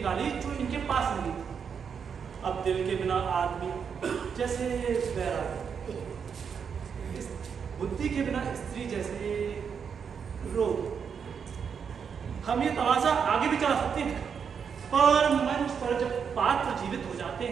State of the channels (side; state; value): left; quieter; 6.8 dB